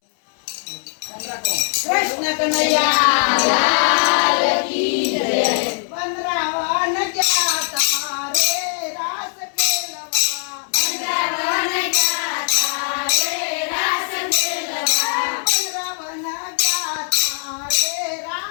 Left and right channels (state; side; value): silent; right; 66 dB below the other